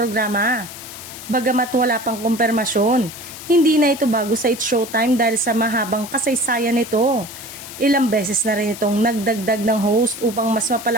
Bagamat wala pang kumpirmasyon, hindi na ito bago sa It's Showtime dahil sa mahabang kasaysayan nito. Ilang beses na rin itong nagdagdag ng host upang mas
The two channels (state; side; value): noise; left; hiss, 13 dB below the sound